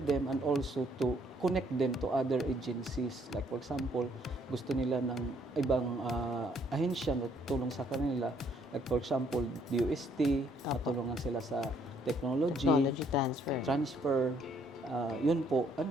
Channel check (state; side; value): normal; both; correlation 0.66